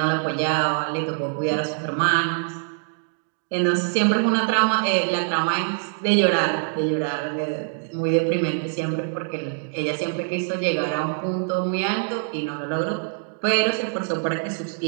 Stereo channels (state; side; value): silent; left; digital silence